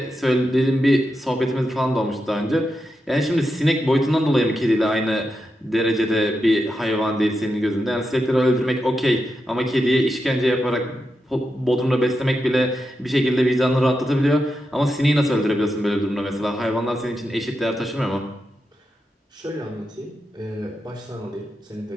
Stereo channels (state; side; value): normal; both; correlation 0.87